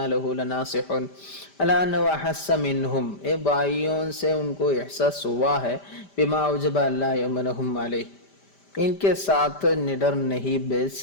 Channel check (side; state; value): right; late; 5.1 ms